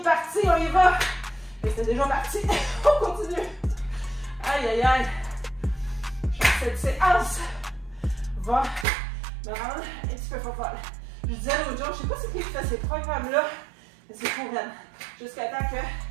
parti, on y va. Et c'est déjà parti. On continue. Aïe, aïe, aïe. Cette séance va me rendre un petit peu folle. Je disais l'autre jour, je ne sais pas si qui fait ces programmes-là, mais c'est pour elle. Jusqu'à temps que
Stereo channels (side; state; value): left; drops out; at 8.8 s